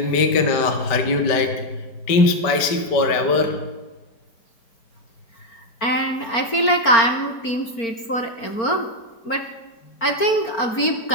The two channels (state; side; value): late; right; 4.4 ms